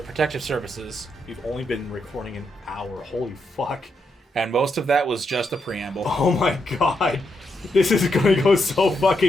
services, we've only been recording an hour. Holy fuck. and most of that was just a preamble. Oh my god. This is going to go so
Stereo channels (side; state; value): both; normal; correlation 0.81